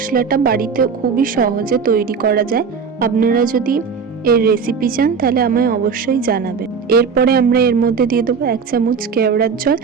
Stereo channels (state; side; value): quieter; left; 5.9 dB